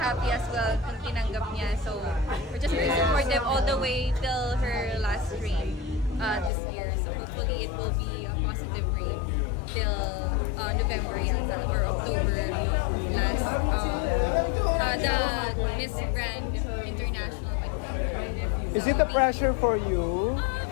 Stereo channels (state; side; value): drops out; right; at 6.5 s